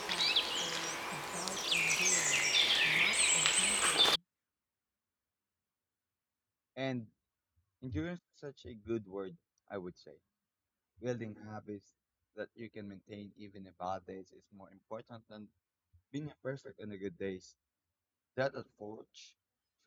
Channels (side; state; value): both; identical; correlation 1.00